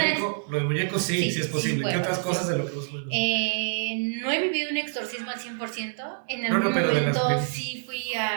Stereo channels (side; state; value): left; silent; 55 dB below the other